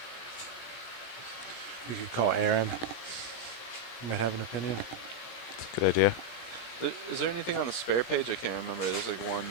We could call Aaron. He might have an opinion. That's a good idea. Is there anything on the spare page? I can't remember. There's like one.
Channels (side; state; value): right; late; 17 ms